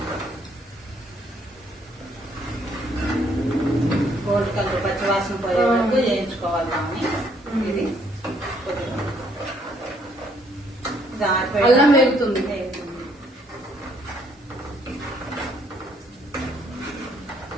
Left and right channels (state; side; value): normal; both; correlation 0.67